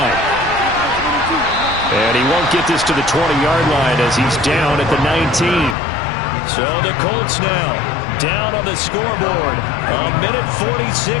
And he won't get this to the 20-yard line as he's down at the 19. So the Colts now down on the scoreboard. A minute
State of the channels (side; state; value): right; drops out; at 5.8 s